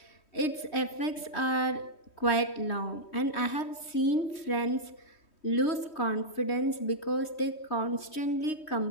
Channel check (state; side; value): late; right; 3.1 ms